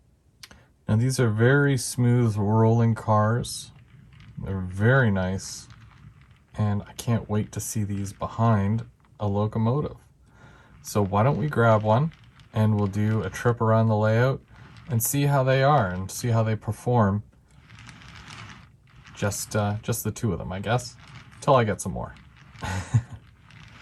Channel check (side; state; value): both; identical; correlation 1.00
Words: Now these are very smooth rolling cars. They're very nice, and I can't wait to see these behind a locomotive. So why don't we grab one and we'll do a trip around the layout and see how they are and see how they perform. Just the two of them, I guess, till I get some more.